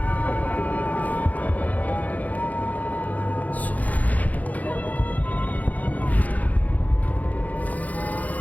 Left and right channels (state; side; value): late; right; 0.077 ms